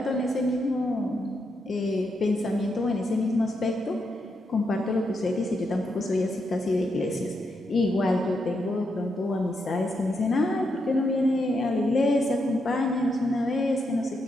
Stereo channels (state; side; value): normal; both; correlation 0.82